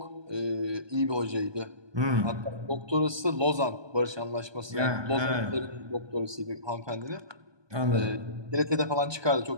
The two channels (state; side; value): late; left; 1.2 ms